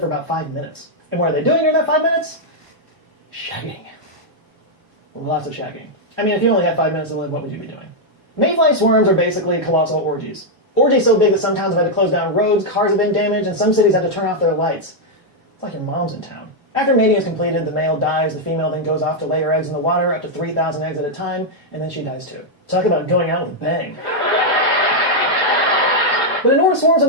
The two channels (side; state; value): both; normal; correlation -0.02